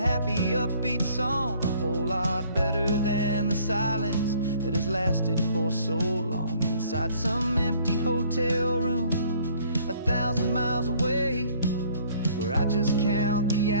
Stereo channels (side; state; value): both; inverted; correlation -0.59